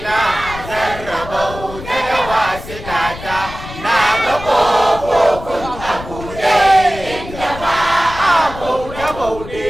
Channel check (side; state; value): left; noise; rumble, 12 dB below the sound